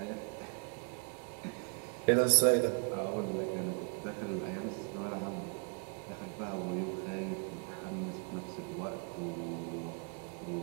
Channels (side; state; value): left; quieter; 39.4 dB